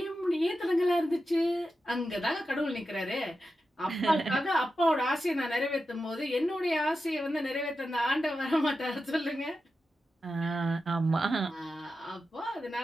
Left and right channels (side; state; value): both; normal; correlation 0.90